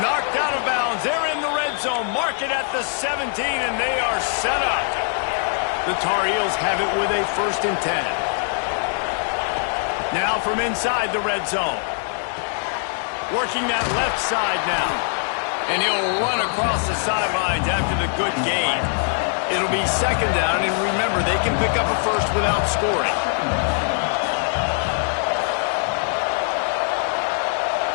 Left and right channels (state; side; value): silent; right; 60 dB below the other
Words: Knocked out of bounds. They're in the red zone. Mark it at the 17, and they are set up. The Tar Heels have it with a 1st and 10. Now from inside the red zone. Working that left side now. And he'll run across the sidelines after the good gain. It'll be 2nd down, and remember, they can pick up a first without scoring.